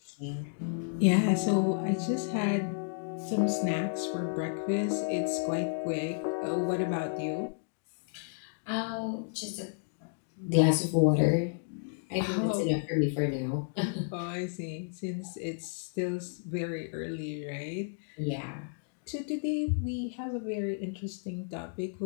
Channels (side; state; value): right; silent; digital silence